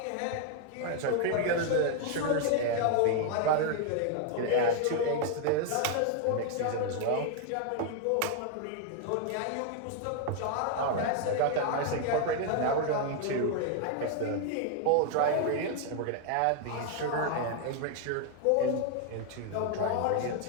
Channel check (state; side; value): different; both; correlation 0.00